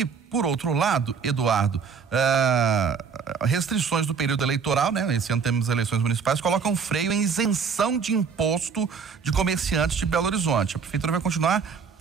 por outro lado, Eduardo, restrições do período eleitoral, né? Esse ano temos eleições municipais, colocam freio em isenção de imposto de comerciantes de Belo Horizonte. A prefeitura vai continuar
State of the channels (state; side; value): quieter; left; 6.0 dB